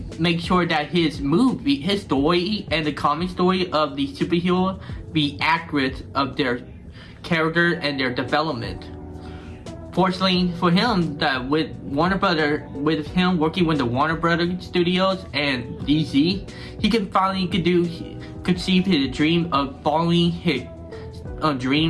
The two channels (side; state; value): both; identical; correlation 1.00